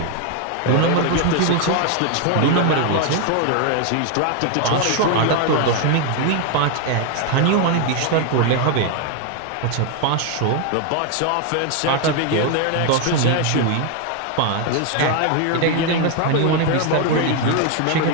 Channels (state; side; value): different; both; correlation 0.01